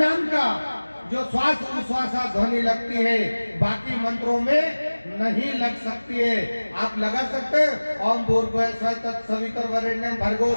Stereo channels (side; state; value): both; inverted; correlation -1.00